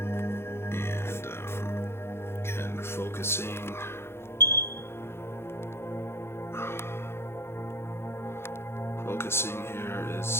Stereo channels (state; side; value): late; right; 0.12 ms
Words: And again, focusing. Focusing here